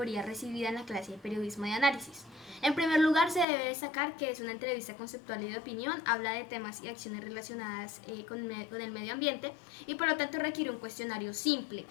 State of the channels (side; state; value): right; drops out; at 3.5 s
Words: recibida en la clase de periodismo de análisis. En primer lugar, se debe destacar que es una entrevista conceptual y de opinión, habla de temas y acciones relacionadas con el medio ambiente y por lo tanto requiere un cuestionario simple,